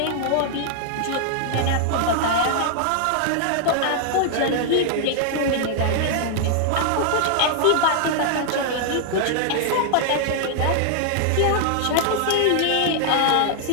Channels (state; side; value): different; both; correlation 0.00